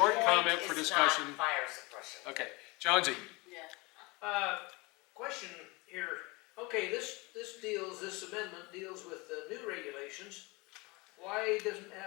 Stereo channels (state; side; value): quieter; right; 25.6 dB